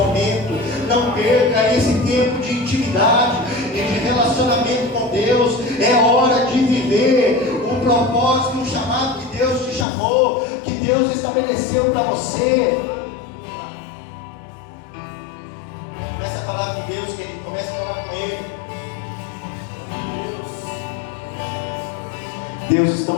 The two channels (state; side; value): drops out; right; at 9.9 s